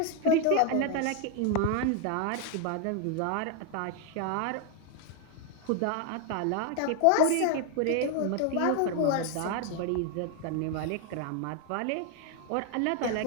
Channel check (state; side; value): different; both; correlation 0.01